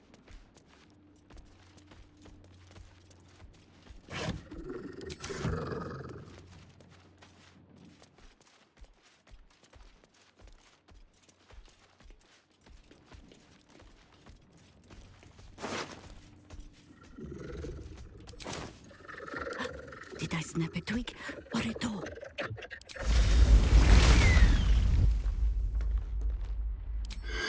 Did I snap a twig or a toe?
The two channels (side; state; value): both; identical; correlation 1.00